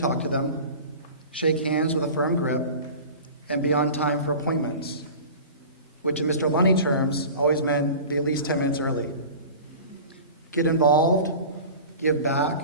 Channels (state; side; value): inverted; both; correlation -0.37